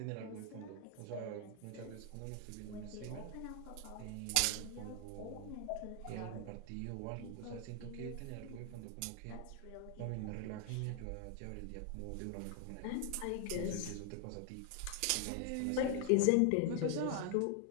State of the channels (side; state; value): both; different; correlation 0.00